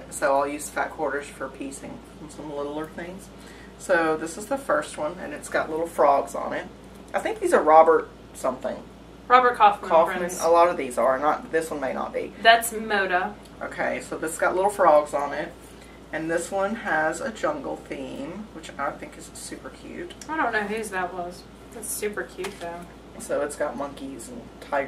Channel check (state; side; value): identical; both; correlation 1.00